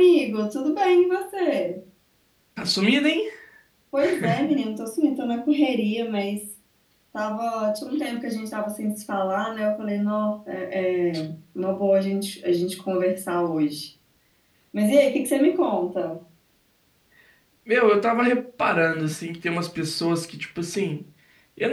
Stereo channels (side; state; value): both; identical; correlation 1.00